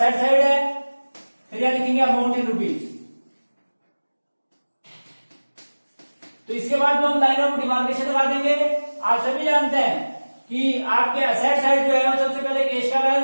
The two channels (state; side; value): inverted; both; correlation -1.00